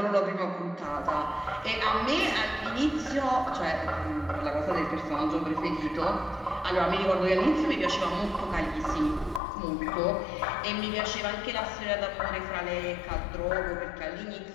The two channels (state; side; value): drops out; right; at 9.4 s